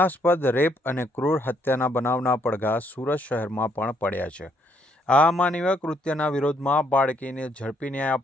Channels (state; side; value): normal; both; correlation 0.71